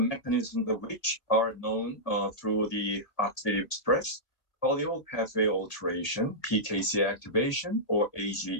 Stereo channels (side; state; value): right; late; 1.9 ms